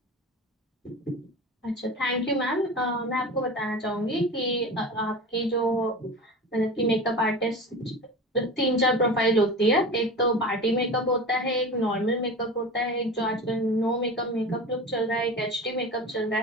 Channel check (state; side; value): normal; both; correlation 0.31